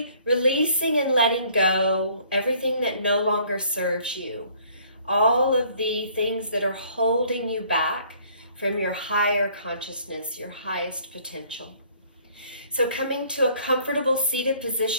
releasing and letting go everything that no longer serves you. All of the things that are holding you back from your higher consciousness, your highest potential. So coming to a comfortable seated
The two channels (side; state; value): both; inverted; correlation -0.58